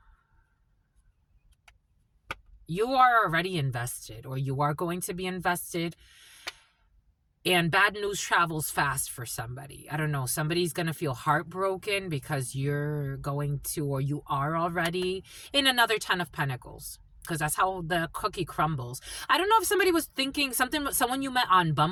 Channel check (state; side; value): identical; both; correlation 1.00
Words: you are already invested, or you are going to be invested, and bad news travels fast for somebody. I don't know. Somebody's going to feel heartbroken because you're going to, or you are already in another 10 of Pentacles, because that's how the cookie crumbles. I don't know if somebody was thinking something, someone you met on